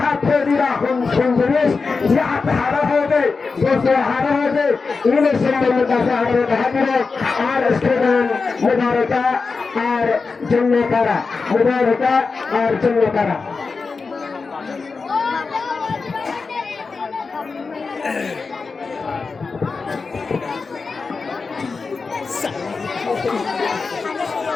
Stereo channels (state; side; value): quieter; right; 4.5 dB